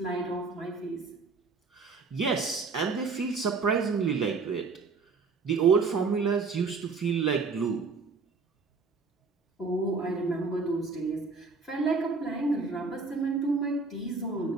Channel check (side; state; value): left; quieter; 4.4 dB